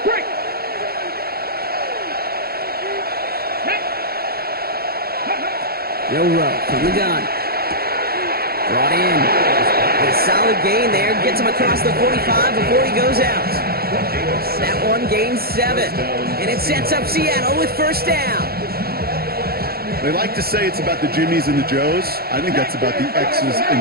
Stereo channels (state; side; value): late; left; 0.45 ms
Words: break. Milrow from the gun. Brought in. A solid gain there. Gets him across the 45 before he goes out. That one gains 7. And it sets up Seattle with 1st down. They like to say it's about the Jimmies and the Joes. I think that's about the X's and